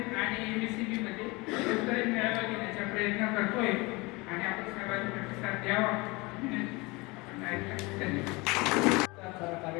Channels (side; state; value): right; quieter; 24.9 dB